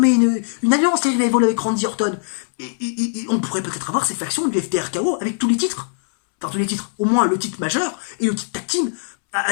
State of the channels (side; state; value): right; silent; 66 dB below the other